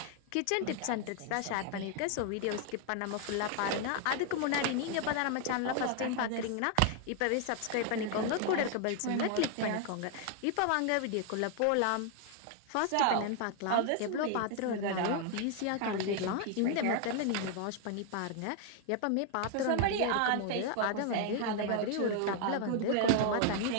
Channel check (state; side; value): different; both; correlation 0.00